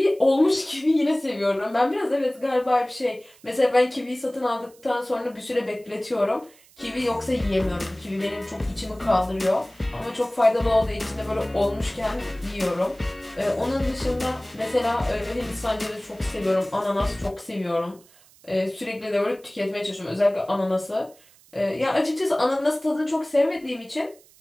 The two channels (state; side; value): noise; right; hiss, 27 dB below the sound